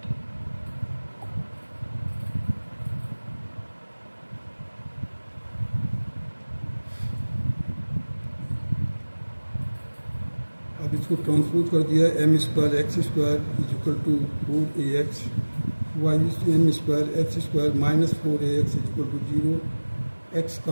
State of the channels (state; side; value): inverted; both; correlation -1.00